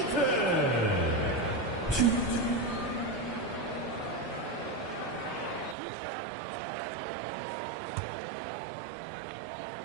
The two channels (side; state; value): left; drops out; at 5.8 s